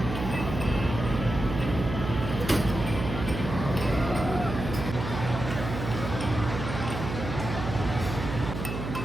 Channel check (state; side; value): noise; right; hum, 5 dB below the sound